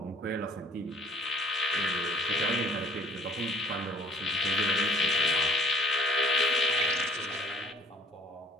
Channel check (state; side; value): normal; both; correlation 0.53